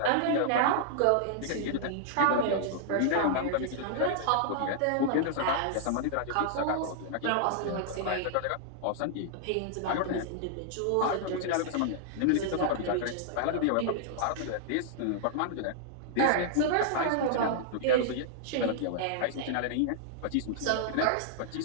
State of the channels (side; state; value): both; different; correlation -0.01